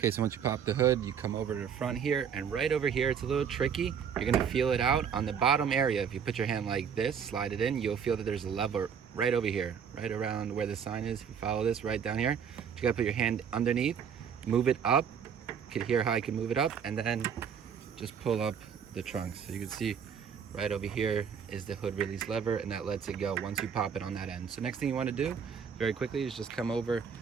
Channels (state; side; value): quieter; left; 7.3 dB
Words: so once you pop the hood, you come over to the front here, and right over here, it's a little tricky. You're gonna feel it out on the bottom area. If you put your hand like this, slide it in, you'll feel that there's a lever right over here, right around where the sign is. If you follow this right down here, you gotta put your hand underneath, move it up. You can hear how I can move it up, and then just pull up the trunk. So you can see right over here is the hood release lever, and that lets it go once you pop it on that end. So next thing you wanna do, very quickly, is just come over